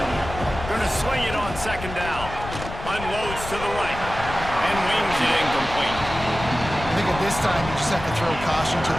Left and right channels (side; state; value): left; noise; rumble, 10 dB below the sound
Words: Going to swing it on 2nd down. Unloads to the right. And wings it incomplete. I think at this time, you just have to throw caution to